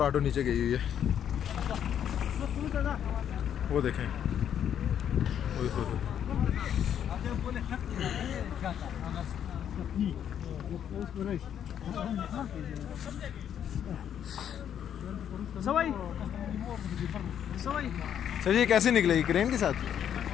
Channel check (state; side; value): quieter; right; 9.3 dB